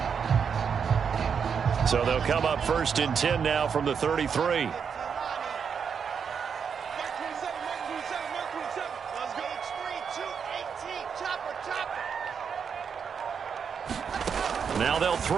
So they'll come up 1st and 10 now from the 33. Now they'll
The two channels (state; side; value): quieter; left; 6.7 dB